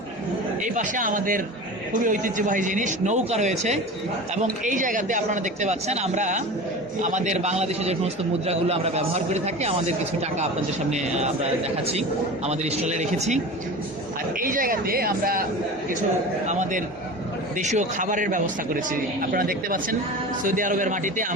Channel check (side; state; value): both; normal; correlation 0.33